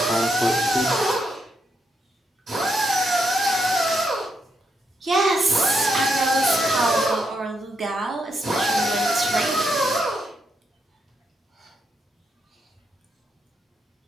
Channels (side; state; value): both; normal; correlation 0.80